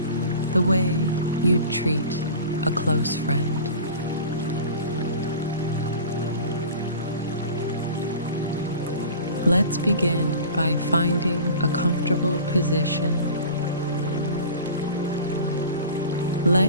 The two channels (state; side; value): inverted; both; correlation -0.39